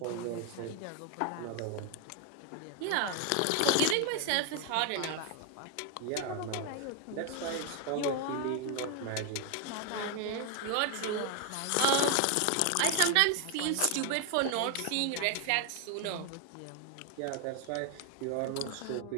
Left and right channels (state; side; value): different; both; correlation 0.00